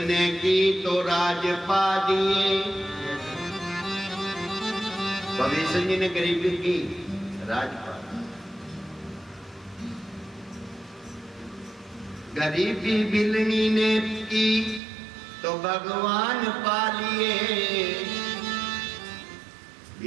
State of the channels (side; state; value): left; drops out; at 14.8 s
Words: की तो राज पा दिए। भविष्य जी ने गरीबी की, राजपाल। गरीबी बिलनी ने की तो भगवान पा लिए।